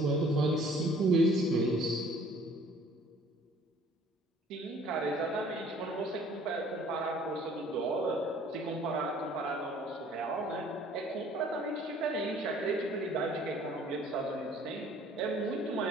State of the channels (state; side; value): normal; both; correlation 0.54